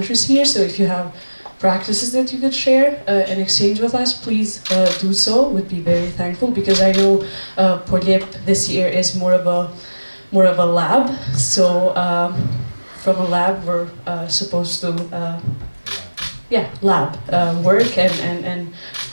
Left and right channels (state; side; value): inverted; both; correlation -1.00